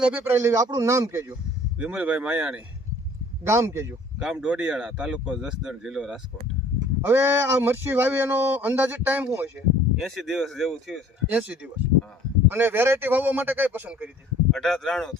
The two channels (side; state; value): both; normal; correlation 0.52